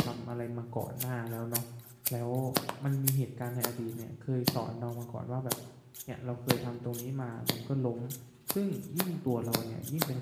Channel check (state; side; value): identical; both; correlation 1.00